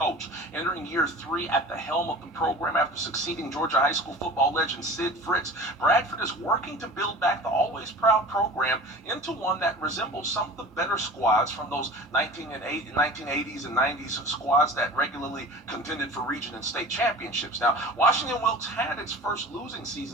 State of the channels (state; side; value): normal; both; correlation 0.39